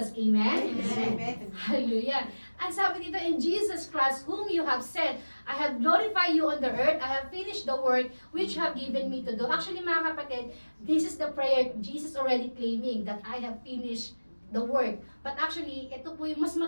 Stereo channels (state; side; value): inverted; both; correlation -1.00